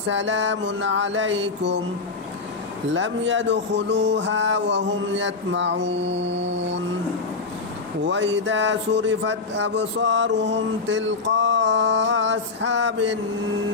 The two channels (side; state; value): right; quieter; 4.1 dB